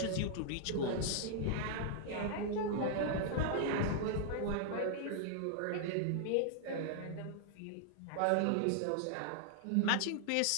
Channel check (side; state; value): both; different; correlation -0.01